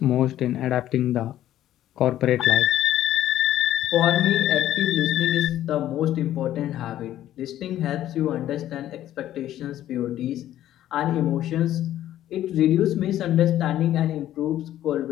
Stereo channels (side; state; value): right; quieter; 12.6 dB